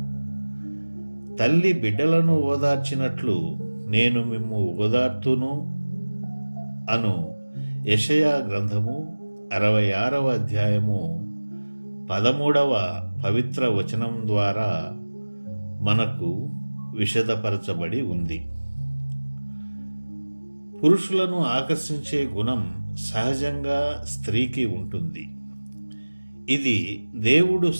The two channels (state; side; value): inverted; both; correlation -1.00